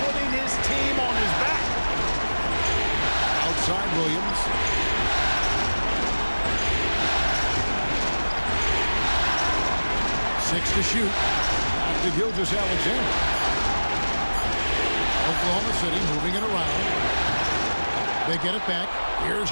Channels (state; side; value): inverted; both; correlation -1.00